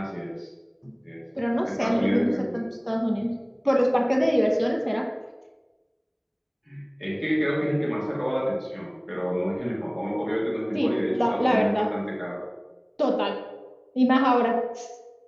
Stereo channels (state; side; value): identical; both; correlation 1.00